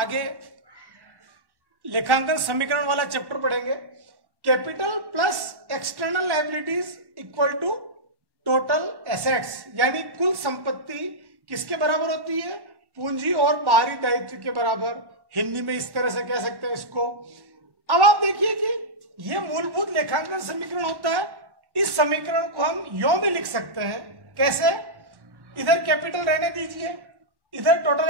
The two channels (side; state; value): left; late; 1.1 ms